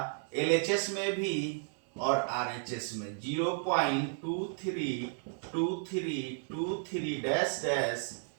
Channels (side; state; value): left; silent; 56 dB below the other